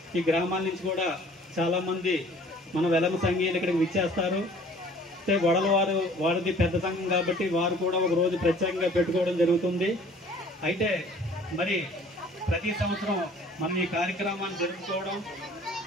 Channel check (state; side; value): normal; both; correlation 0.52